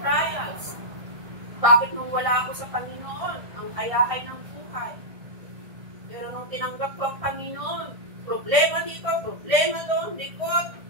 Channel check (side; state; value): left; late; 1.6 ms